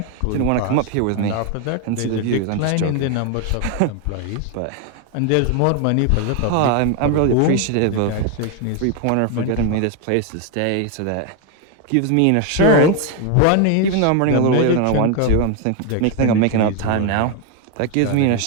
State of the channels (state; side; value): different; both; correlation 0.01